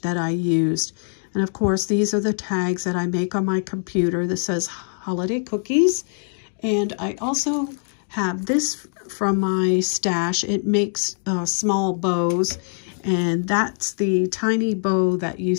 that I used, and of course these are the tags that I make on my computer. This says holiday cookies, and I also have this from my stash. It makes small bows, and that's the tiny bow that you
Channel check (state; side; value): silent; right; 58 dB below the other